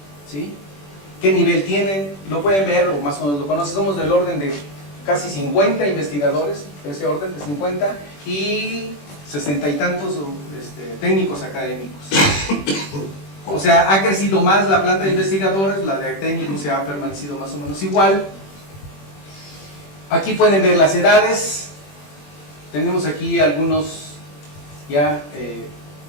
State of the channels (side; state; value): right; late; 21 ms